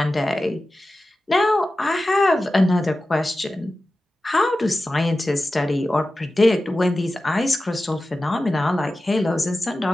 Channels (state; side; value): normal; both; correlation 0.94